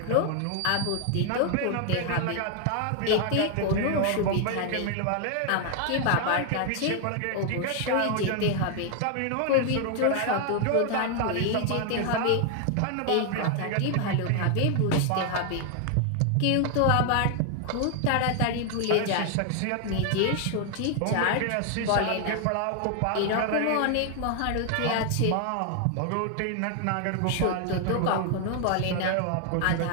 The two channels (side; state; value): both; different; correlation 0.00